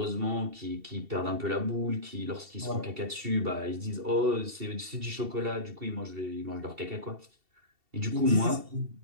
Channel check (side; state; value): left; late; 2.7 ms